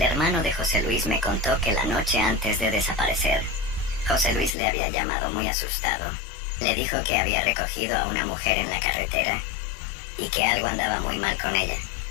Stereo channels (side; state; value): right; drops out; at 4.5 s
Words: hermano de José Luis me contó que la noche antes de desaparecer, José Luis le había llamado muy asustado. Le dijo que había recogido a una mujer en la carretera y que algo andaba muy mal con ella,